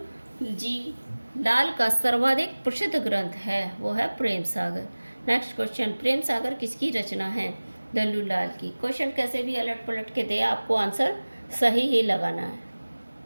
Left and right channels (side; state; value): both; inverted; correlation -1.00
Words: जी लाल का सर्वाधिक प्रसिद्ध ग्रंथ है, वो है प्रेम सागर। नेक्स्ट क्वेश्चन, प्रेम सागर किसकी रचना है? लल्लू लाल की। क्वेश्चन कैसे भी अलट पलट के दे, आपको आंसर सही ही लगाना है।